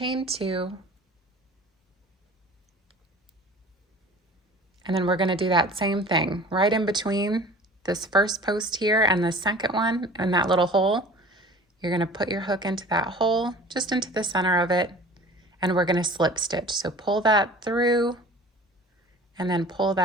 2, and then we're going to do that same thing right in between this first post here and the second one in that little hole. You're going to put your hook into that hole, just into the center of it, and we're going to slip stitch. So pull that through and then pull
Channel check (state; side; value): normal; both; correlation 0.44